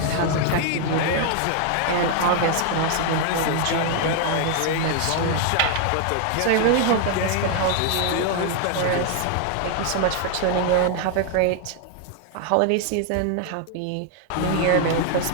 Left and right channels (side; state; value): both; different; correlation 0.00